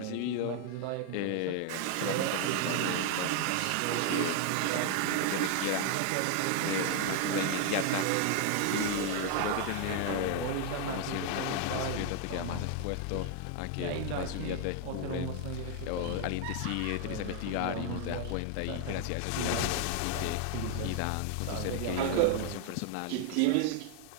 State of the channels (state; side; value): different; both; correlation 0.00